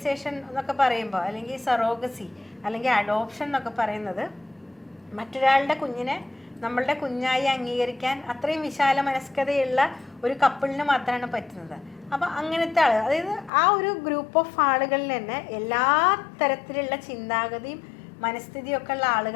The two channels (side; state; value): right; drops out; at 13.5 s